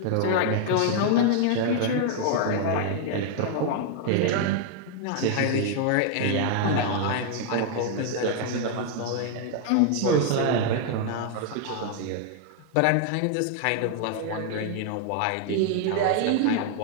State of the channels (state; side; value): different; both; correlation 0.00